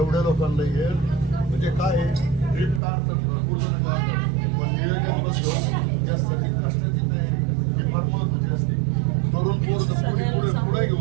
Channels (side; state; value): left; drops out; at 2.8 s